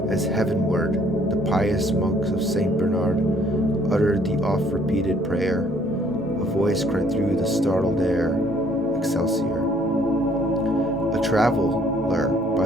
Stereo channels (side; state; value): both; normal; correlation 0.62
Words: as heavenward, the pious monks of St. Bernard uttered the oft-repeated prayer. A voice cried through the startled air, Excelsior. A traveler